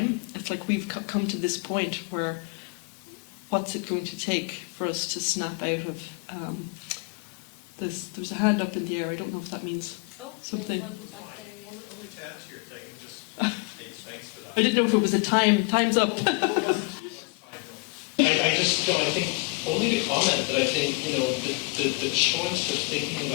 It's like we've come to this point where what's it going to take for us to snap out of there's a hand up in the air, I don't know if that means something. There's one back there, yeah. Only to add to your thing, just thanks for that. I didn't know if it was a time's up. I think only to comment that I think, you know, the choice of thinking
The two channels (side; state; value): right; quieter; 29.0 dB